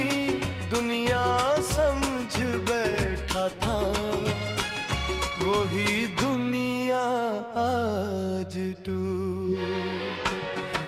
दुनिया समझ बैठा था। वही दुनिया आज टूट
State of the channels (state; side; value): identical; both; correlation 1.00